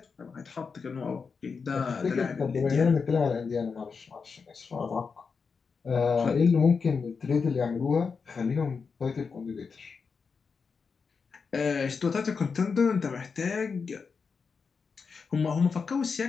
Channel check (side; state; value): right; quieter; 5.3 dB